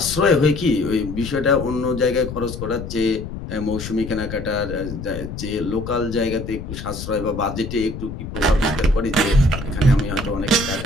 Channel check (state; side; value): noise; left; rumble, 8 dB below the sound